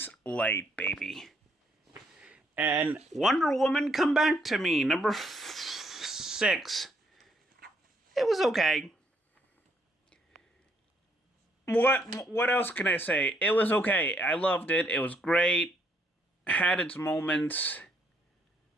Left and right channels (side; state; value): both; normal; correlation 0.71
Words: light, baby. And Wonder Woman Come Back to Me, number 6. It was okay. What else can I say? It was okay. I loved it. It was great. Had its moments.